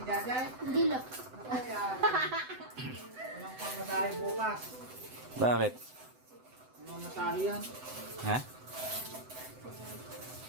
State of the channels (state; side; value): late; left; 7.9 ms